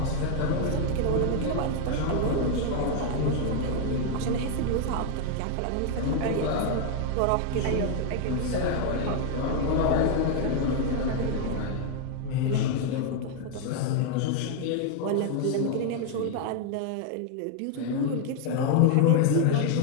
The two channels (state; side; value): different; both; correlation 0.00